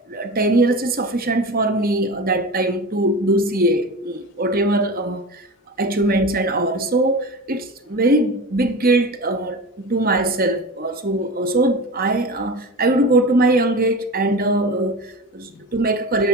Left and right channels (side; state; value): both; normal; correlation 0.29